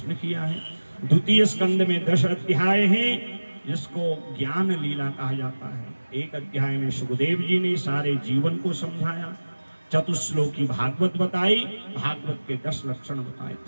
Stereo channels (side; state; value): both; inverted; correlation -1.00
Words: किया है। द्वितीय स्कंद में 10 अध्याय हैं जिसको ज्ञान लीला कहा जाता है। एक अध्याय में सुखदेव जी ने सारे जीवन को समझाया। चतुश्लोकी भागवत बताई, भागवत के 10 लक्षण बताए।